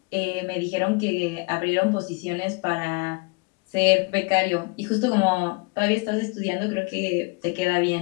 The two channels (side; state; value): right; quieter; 29.4 dB